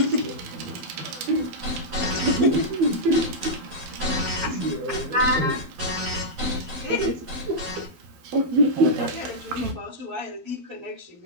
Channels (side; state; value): left; late; 12 ms